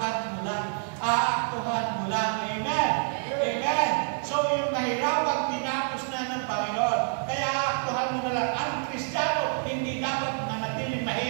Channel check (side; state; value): left; silent; 60 dB below the other